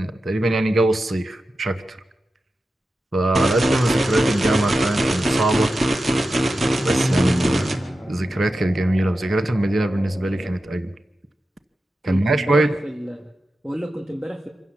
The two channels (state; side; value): normal; both; correlation 0.92